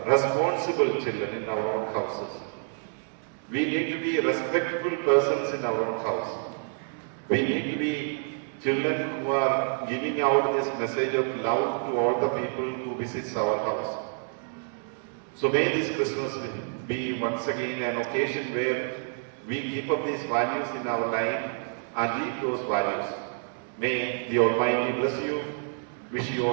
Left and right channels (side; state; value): left; silent; 59 dB below the other